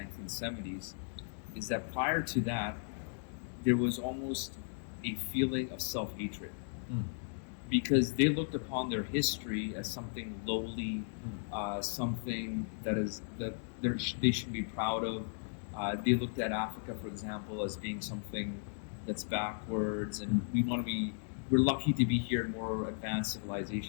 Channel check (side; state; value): right; silent; digital silence